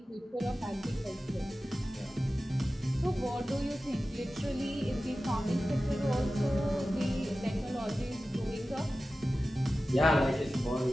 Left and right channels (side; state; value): both; normal; correlation 0.95